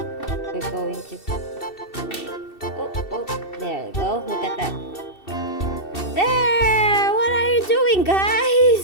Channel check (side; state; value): right; late; 2.7 ms